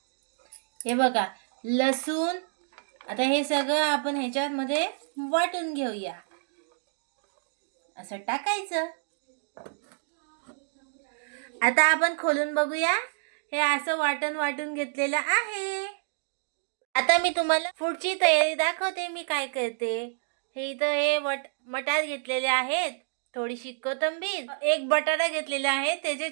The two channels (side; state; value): left; silent; digital silence